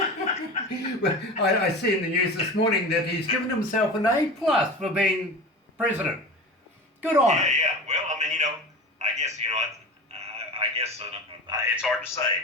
Well, I see in the news this morning that he's given himself an A+ for being president. Good on him. Yeah. Well, I mean, you know, I guess it's hard to say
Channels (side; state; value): both; normal; correlation 0.31